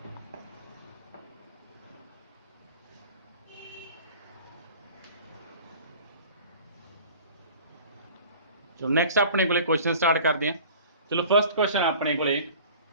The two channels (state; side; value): inverted; both; correlation -0.44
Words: चलो नैक्सट अपने को क्वेश्चन स्टार्ट करते हैं। चलो फर्स्ट क्वेश्चन अपने को